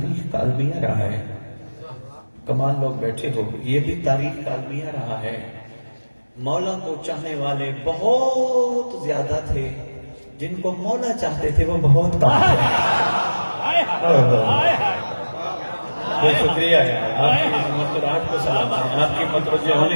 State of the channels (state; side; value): inverted; both; correlation -1.00